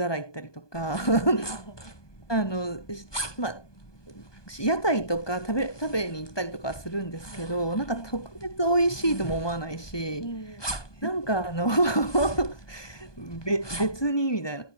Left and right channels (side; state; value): right; late; 1.2 ms